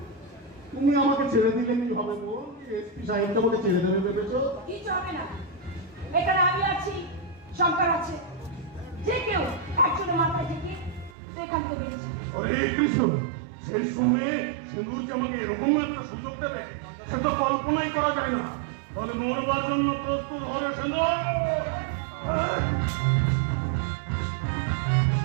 তুমি আমাকে ছেড়ে দিলে কি হবে গো? এসপি সাহেব তোমাকে ছেড়ে দেবে ভেবেছো? কিছু হবে না, এখানে আমি আছি, শঙ্কর আছে, যে কেউ একজনের মাথায় থেকে তুই এখান থেকে বেরিয়েছে। হরে কৃষ্ণ, সেই সময়ে সিন্ধুকে আমাকে এরকম একটা সুযোগ দেবে সেটা কল্পনাই করা যায় না। বলে মরবার জন্য প্রস্তুত হলো সিন্ধু।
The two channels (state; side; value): drops out; left; at 11.2 s